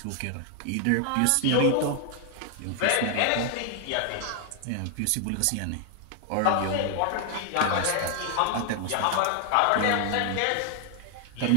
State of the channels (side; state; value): both; different; correlation 0.00